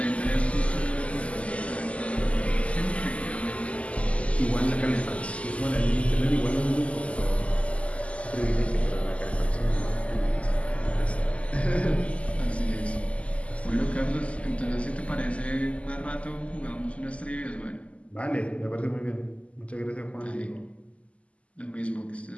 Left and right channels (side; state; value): right; late; 0.063 ms